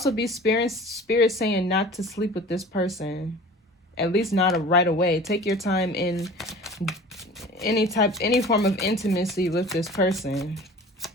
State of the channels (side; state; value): both; normal; correlation 0.42